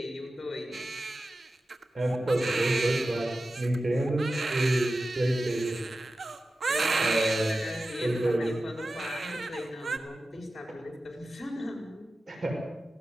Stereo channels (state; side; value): normal; both; correlation 0.94